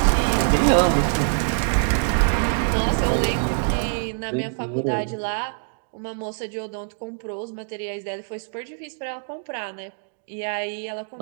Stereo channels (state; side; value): silent; left; digital silence